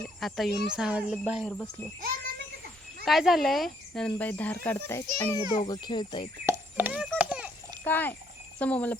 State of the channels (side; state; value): both; normal; correlation 0.69